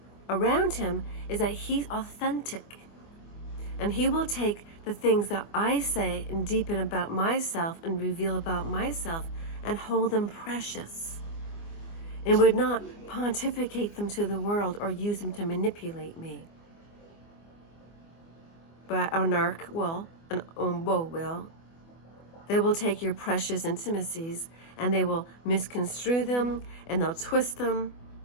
around him is that he's authentic. And he will take the things that I say and deepen about myself and reveal about myself and hold them precious. And would not pontificate them to the world or use them to manipulate me. But a narc will, an umbo will. They will take your precious intimacies and they will misconstrue them and they'll twist them.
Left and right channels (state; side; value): late; right; 24 ms